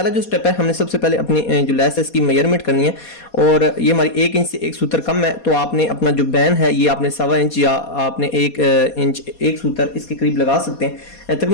जो स्टेप है, हमने सबसे पहले अपनी जो लेस है इसकी मेजरमेंट करनी है। और ये हमारी 1 इंच से एक सूत्र कम है, तो आपने अपना जो बैन है ये आपने 1.25 इंच या आपने 1 इंच एक सूत्र इसके करीब लगा सकते हैं।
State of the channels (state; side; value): late; right; 4.2 ms